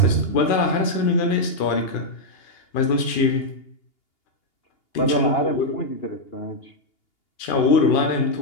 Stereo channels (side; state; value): right; late; 2.8 ms